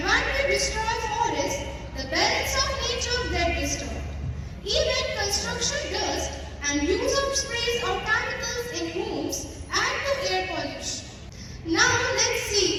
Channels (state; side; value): identical; both; correlation 1.00